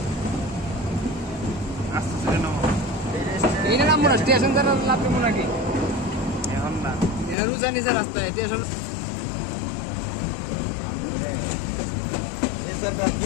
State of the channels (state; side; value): drops out; right; at 7.4 s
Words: আস্তে আস্তে নামো। এইটা নামবো না স্টেশন দ্বারা লাভ দেবো নাকি এখন না রুচা নিচে রাস্তায় স্টেশন